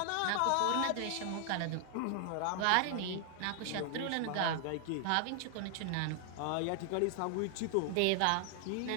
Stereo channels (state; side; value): different; both; correlation 0.00